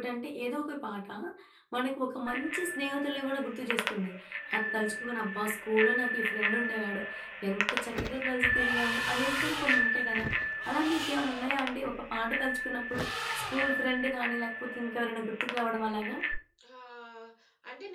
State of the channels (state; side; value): identical; both; correlation 1.00